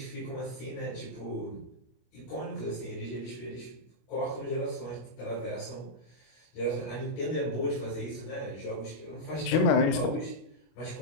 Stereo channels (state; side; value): late; right; 25 ms